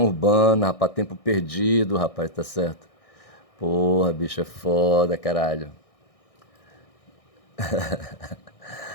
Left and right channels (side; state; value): right; late; 1.6 ms